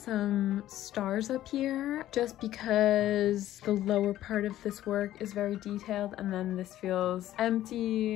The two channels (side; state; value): right; quieter; 13.5 dB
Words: stars up here just because the lower part of this work is very detailed and then this feels